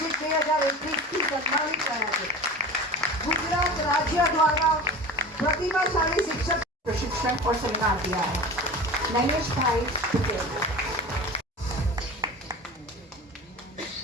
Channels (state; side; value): normal; both; correlation 0.34